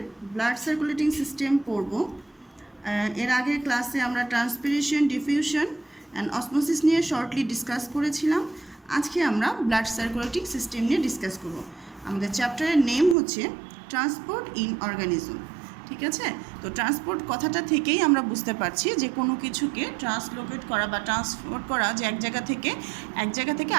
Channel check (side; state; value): left; drops out; at 13.2 s